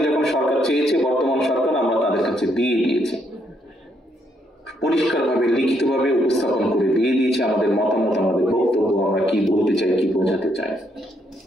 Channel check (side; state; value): both; normal; correlation 0.74